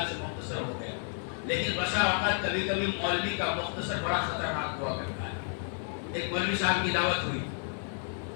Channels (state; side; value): silent; right; 57 dB below the other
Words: سے مختصر ہو گیا، لیکن بسا اوقات کبھی کبھی مولوی کا مختصر بڑا خطرناک ہوا کرتا ہے۔ ایک مولوی صاحب کی دعوت ہوئی